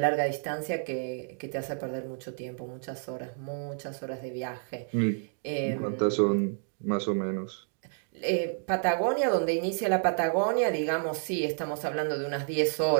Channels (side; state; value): left; silent; digital silence